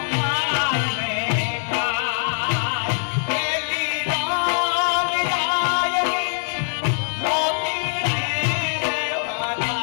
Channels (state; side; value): silent; right; 64 dB below the other